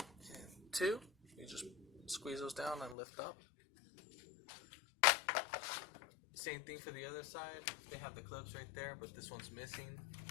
two. You just squeeze those down and lift up. Same thing for the other side. They have the clips right there, but this one's missing.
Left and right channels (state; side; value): drops out; right; at 3.0 s